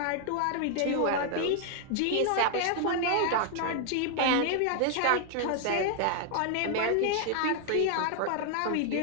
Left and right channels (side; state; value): both; different; correlation 0.00